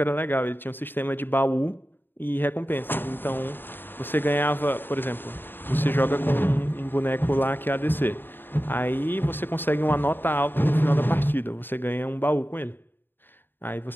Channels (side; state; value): right; late; 0.096 ms